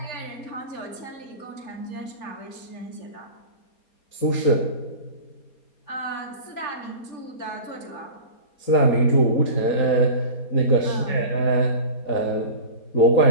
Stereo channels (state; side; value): late; right; 4.3 ms